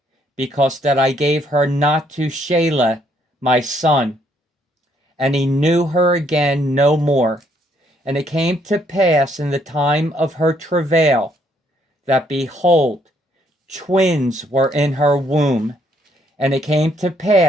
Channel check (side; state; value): both; normal; correlation 0.69